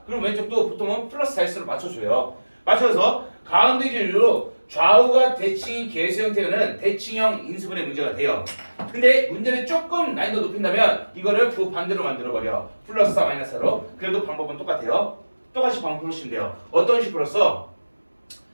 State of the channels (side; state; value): both; inverted; correlation -1.00